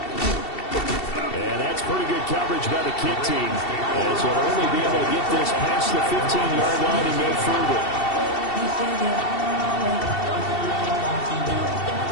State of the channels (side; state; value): right; late; 2.7 ms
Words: And that's pretty good coverage by the kick team, as he'll only be able to get this past the 15-yard line and no further.